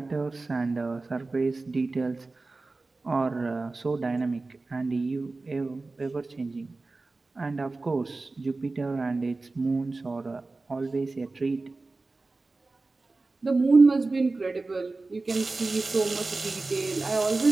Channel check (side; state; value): left; quieter; 3.5 dB